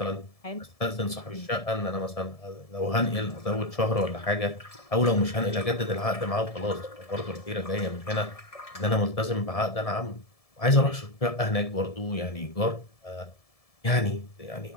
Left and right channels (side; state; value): right; late; 1.7 ms